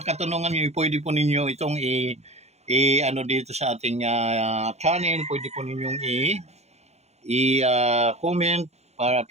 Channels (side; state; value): left; late; 0.31 ms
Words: katanungan nyo, pwede po ninyo itong dito sa ating channel, pwede po ninyong comment para at